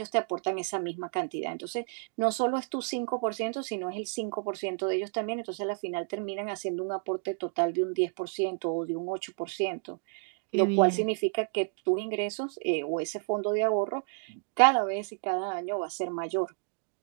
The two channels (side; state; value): left; silent; 57 dB below the other